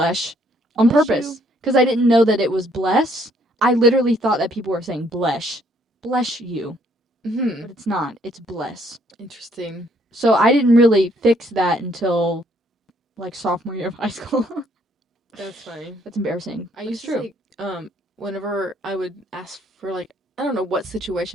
on Bless purpose. you. Because I didn't know that it was bless. I literally thought that people were saying blesh. Bless you. Mm-hmm. But it's not. It's bless. Interesting. So I didn't really fix that until, like, sophomore year of high school. That's funny. That's embarrassing. I used to say, whenever I would ask for, like, I don't know what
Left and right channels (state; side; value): normal; both; correlation 0.66